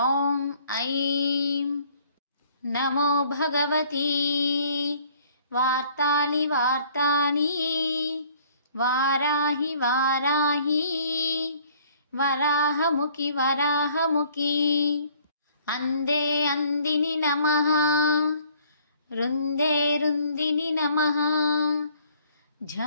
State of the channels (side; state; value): both; inverted; correlation -0.58